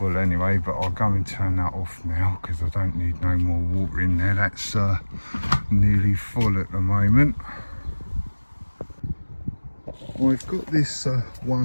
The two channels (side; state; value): both; inverted; correlation -1.00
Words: anyway, but I'll go and turn that off now because I don't need no more water in there. That's nearly full at the moment. I've got this